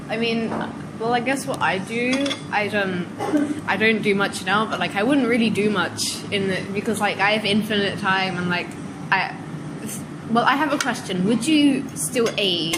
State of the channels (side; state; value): both; identical; correlation 1.00